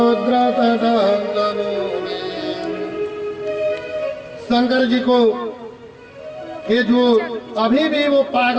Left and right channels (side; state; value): both; identical; correlation 1.00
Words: शंकर जी को कि जो अभी भी वो